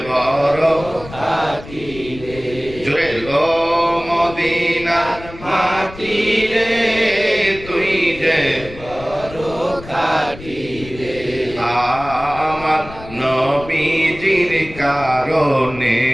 বড় খাঁটি রে জোরে ও মদিনার মাটি রে তুই যে বড় খাঁটি রে আমার নবীজির কারণে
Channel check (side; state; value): left; noise; rumble, 15 dB below the sound